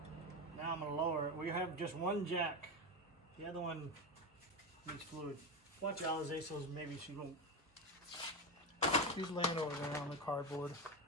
Now I'm going to lower it. We have just one jack. The other one needs fluid. Watch Alize, so maybe she won't. She's laying over there on the cardboard.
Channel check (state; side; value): normal; both; correlation 0.16